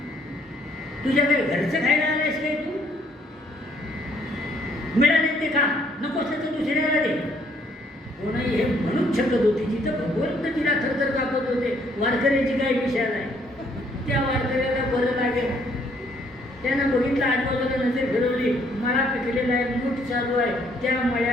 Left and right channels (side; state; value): both; normal; correlation 0.66